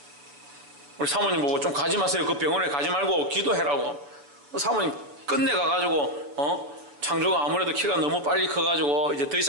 우리 사모님 보고 좀 가지 마세요. 그 병원에 가지 말고 기도해라고. 사모님 끝내 가가지고 창조가 아무래도 키가 너무 빨리 커가지고 이제 더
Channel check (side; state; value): left; late; 7.0 ms